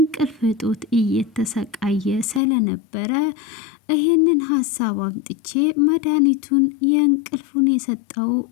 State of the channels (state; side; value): drops out; right; at 2.4 s